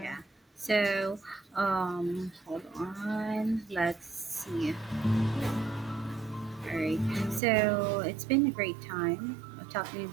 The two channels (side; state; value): left; drops out; at 7.4 s